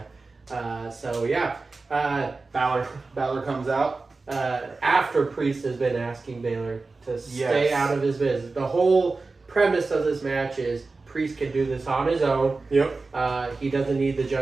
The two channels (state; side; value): quieter; left; 3.8 dB